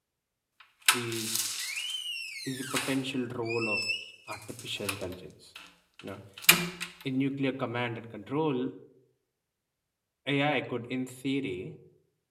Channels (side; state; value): both; identical; correlation 1.00